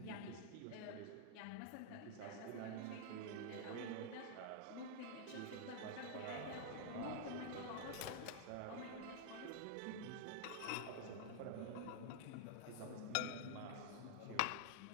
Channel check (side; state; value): both; different; correlation 0.00